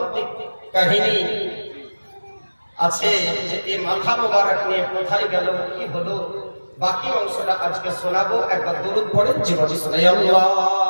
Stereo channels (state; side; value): inverted; both; correlation -1.00